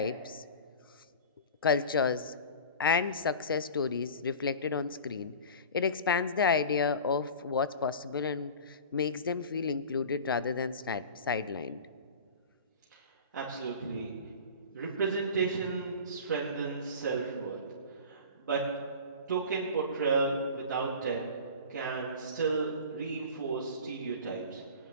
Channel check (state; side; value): inverted; both; correlation -0.36